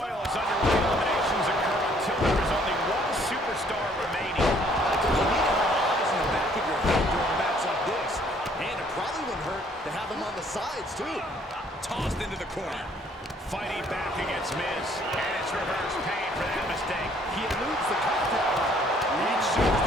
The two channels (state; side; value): normal; both; correlation 0.62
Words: is underway. Eliminations occur until there is only one superstar remaining. You need to have eyes in the back of your head during a match like this. And it probably wouldn't hurt to have them on the sides, too. Tossed into the corner. Fighting back against Miz. And it's reverse pain for that mistake. He eludes the contact. Reed shows